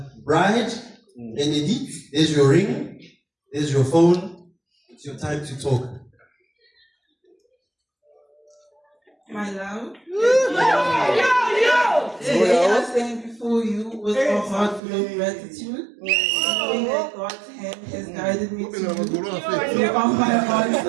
bride, Renedi, there's your ring, there's your phone. It's your time to talk. My love, today I stand before you with a heart full of gratitude, knowing that God's hand has guided me to you. You are my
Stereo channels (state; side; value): drops out; left; at 14.8 s